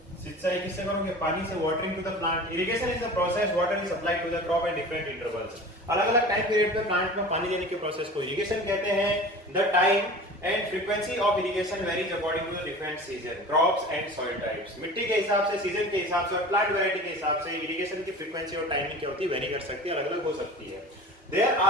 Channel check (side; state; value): both; normal; correlation 0.37